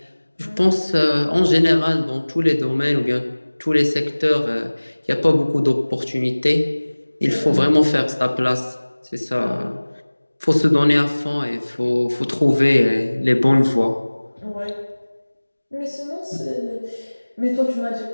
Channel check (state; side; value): inverted; both; correlation -1.00